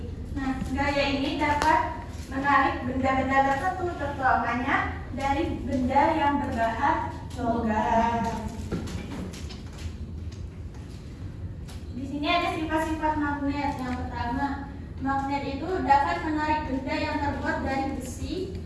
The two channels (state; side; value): identical; both; correlation 1.00